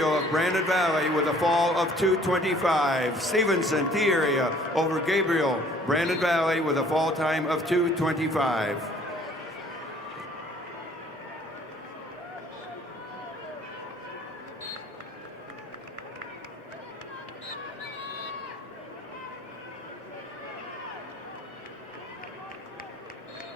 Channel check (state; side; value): normal; both; correlation 0.56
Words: of Brandon Valley with a fall of 225. Stevenson, T area over Gabriel, Brandon Valley with a fall time of 225.